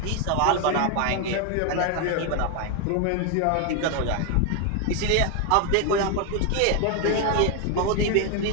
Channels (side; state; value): both; different; correlation 0.01